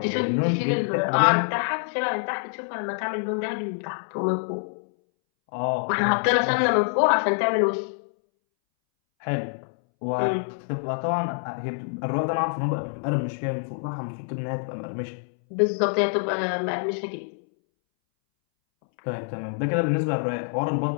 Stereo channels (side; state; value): right; silent; 61 dB below the other